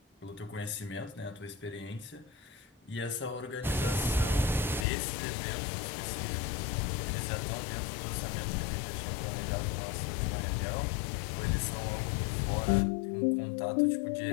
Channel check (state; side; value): drops out; right; at 4.9 s